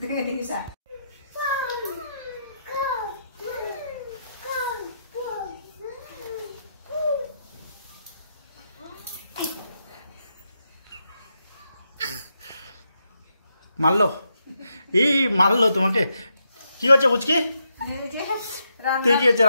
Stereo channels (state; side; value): inverted; both; correlation -0.82